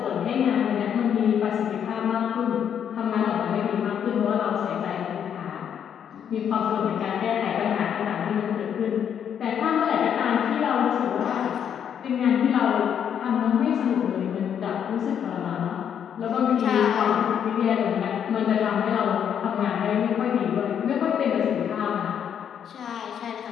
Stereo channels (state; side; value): quieter; right; 8.6 dB